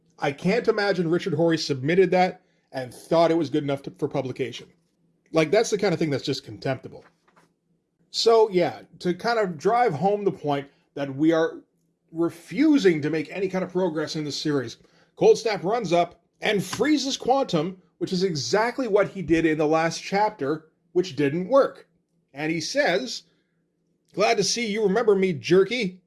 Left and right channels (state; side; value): identical; both; correlation 1.00